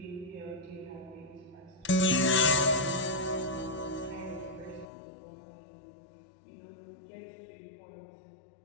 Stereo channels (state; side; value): drops out; right; at 4.9 s